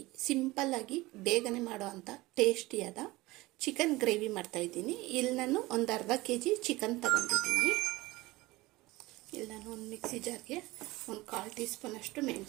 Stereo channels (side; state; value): left; quieter; 20.3 dB